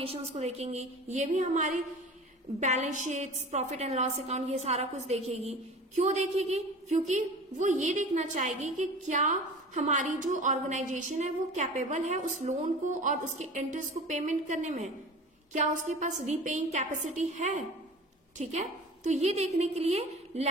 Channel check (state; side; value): normal; both; correlation 0.38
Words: को देखेंगी, ये भी हमारी balance sheets, profit and loss account, ये सारा कुछ देखेगी। क्यों देखेगी? क्योंकि वो ये देखना चाहेगी कि क्या हमारी जो ऑर्गेनाइजेशन है वो कैपेबल है उस लोन को और उसके इंटरेस्ट को पेमेंट करने में, क्या उसके पास रीपेइंग कैपेसिटी है, ठीक है। तो ये देखने के लिए